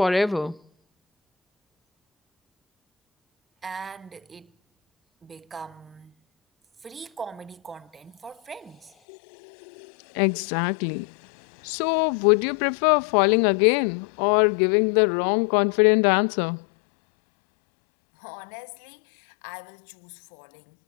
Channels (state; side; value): drops out; right; at 8.9 s